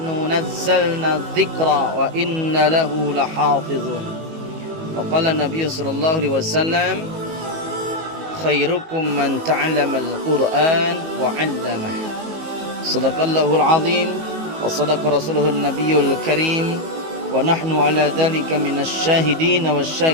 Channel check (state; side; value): late; left; 19 ms